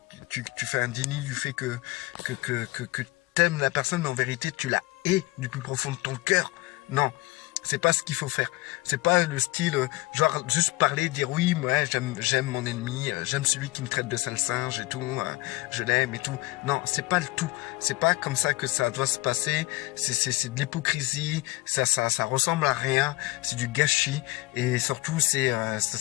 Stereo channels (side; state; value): right; quieter; 20.8 dB